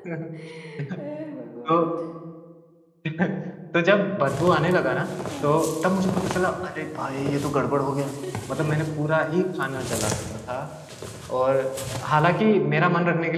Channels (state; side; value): identical; both; correlation 1.00